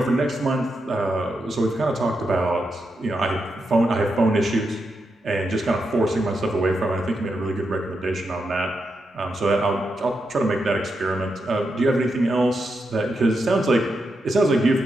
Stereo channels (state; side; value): normal; both; correlation 0.85